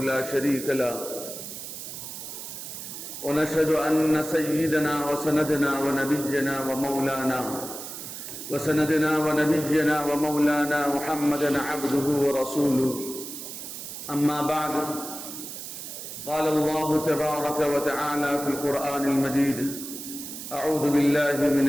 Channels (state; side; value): noise; right; hiss, 9 dB below the sound